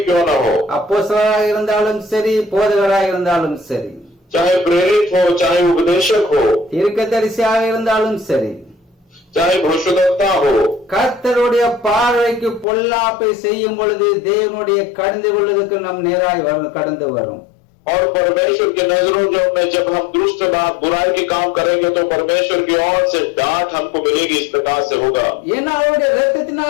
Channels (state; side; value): drops out; right; at 12.7 s